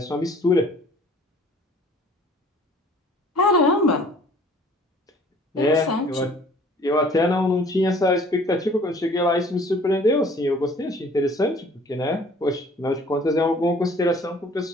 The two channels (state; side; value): normal; both; correlation 0.53